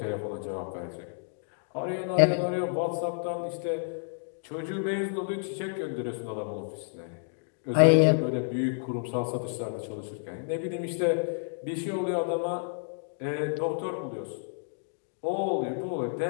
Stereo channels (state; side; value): silent; right; digital silence